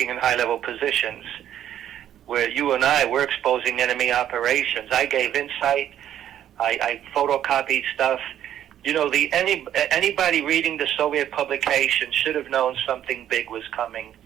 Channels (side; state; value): left; quieter; 10.9 dB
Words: in high-level positions. Where you and I, we're exposing enemy operations. I gave insight. I photocopied stuff. Anybody reading the Soviet publication should have known something big was coming.